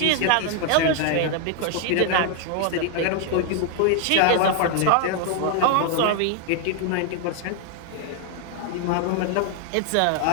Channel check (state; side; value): different; both; correlation 0.00